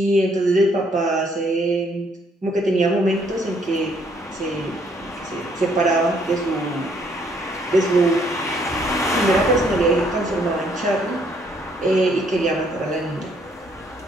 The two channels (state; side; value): normal; both; correlation 0.67